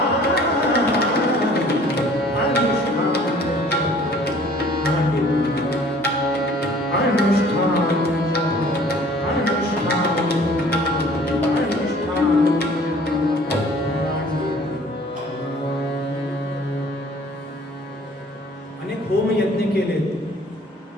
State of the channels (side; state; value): both; normal; correlation 0.53